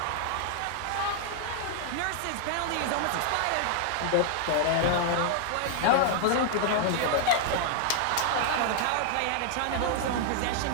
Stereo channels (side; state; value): both; different; correlation 0.00